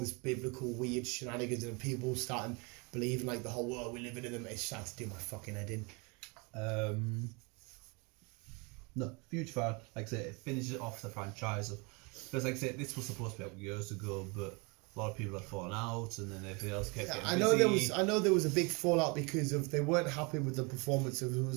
biblical weird shenanigans and people starting believing like the whole world we're living in them, it started to do my fucking head in. No, huge fan. Like I say, it finishes off the franchise. Because like I say, this was supposed to be out years ago, but a lot of people had fallen out, and then everything else kept getting busy. I know there was a big fallout because of they weren't happy with the performance of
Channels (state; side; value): quieter; left; 30.2 dB